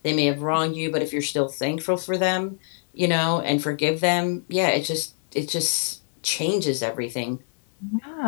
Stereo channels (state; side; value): silent; right; digital silence